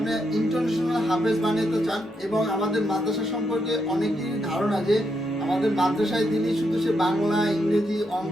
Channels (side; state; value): both; normal; correlation 0.81